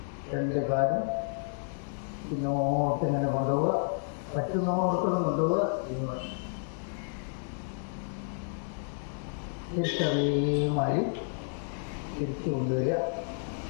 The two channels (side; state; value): right; silent; digital silence